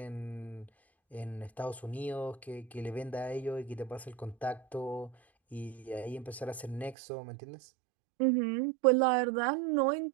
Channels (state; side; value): drops out; left; at 7.0 s